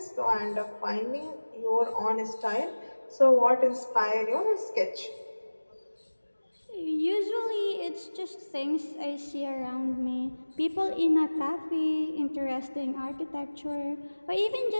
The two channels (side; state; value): both; inverted; correlation -1.00